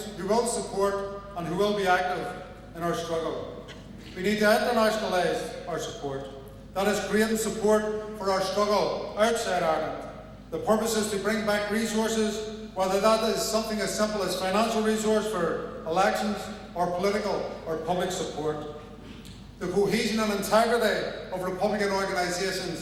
who will support and who will be active in our struggle. We need to internationalise our support. That is creating support for our struggle outside Ireland. The purpose is to bring back resources, whether that is something as simple as financial resource for elections or political or public support. The cohesion and integrity of Republican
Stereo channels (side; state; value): both; identical; correlation 1.00